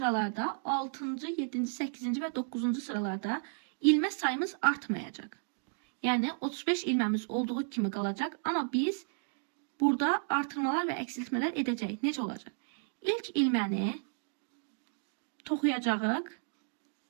6. 7. 8. ve 9. sıralarda ilmə sayımız artmayacaq. Yani 35 ilməmiz olduğu kimi qalacaq, amma biz burada artırmalar və eksiltmələr edəcəyik. Necə olacaq? İlk ilməni toxuyacağıq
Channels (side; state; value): left; silent; digital silence